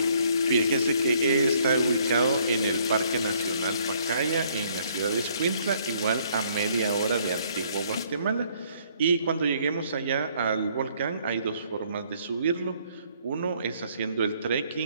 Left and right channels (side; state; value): both; inverted; correlation -0.65